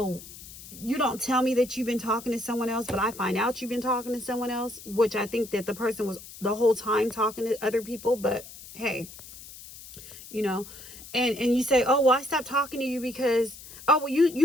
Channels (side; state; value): left; noise; hiss, 16 dB below the sound